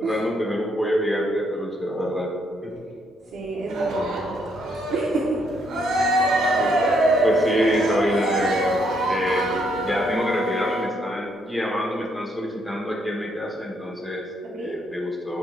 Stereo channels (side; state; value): both; normal; correlation 0.73